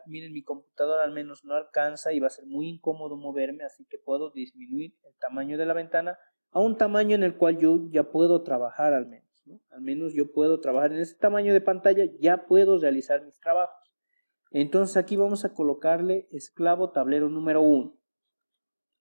Miren, mi computadora al menos no alcanza y va a ser muy incómodo moverme, así que puedo disminuir el tamaño de la ventana a un tamaño en el cual yo ya puedo trabajar al menos, ¿no? Al menos yo puedo trabajar en ese tamaño de pantalla, ya puedo realizar mis trabajos. Entonces aquí vamos a colocarle esclavo tablero número 1.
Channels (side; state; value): both; inverted; correlation -1.00